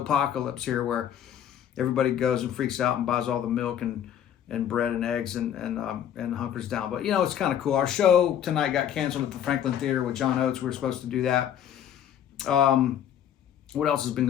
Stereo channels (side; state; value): right; quieter; 9.9 dB